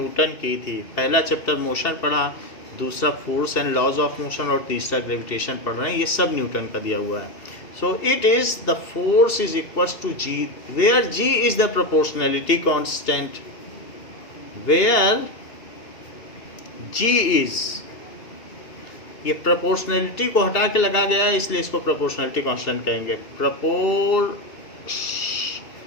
की थी। पहला चैप्टर मोशन पढ़ा, दूसरा force and laws of motion, और तीसरा ग्रेविटेशन पढ़ रहे हैं। ये सब न्यूटन का दिया हुआ है। So it is the force is equals to G, where G is the proportionality constant. Where G is, ये प्रोपोर्शनैलिटी को हटा के लगा गया है इसलिए इसको प्रोपोर्शनैलिटी कांस्टेंट कहेंगे।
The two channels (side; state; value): right; late; 2.7 ms